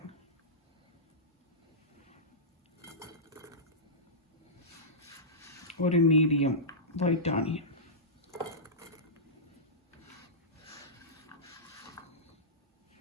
ஒரு மீடியம் ஒயிட் ஆனியன்.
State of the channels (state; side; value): normal; both; correlation -0.17